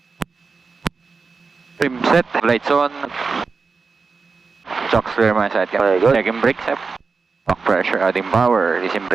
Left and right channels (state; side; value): quieter; left; 4.7 dB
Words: Trim set. Lights on. Chocks clear my side. Okay, good. Checking brakes. Back pressure, adding power. Releasing